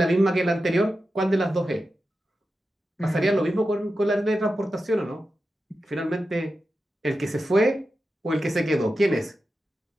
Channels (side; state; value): both; normal; correlation 0.91